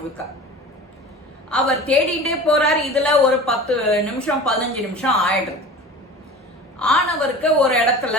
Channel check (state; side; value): normal; both; correlation 0.37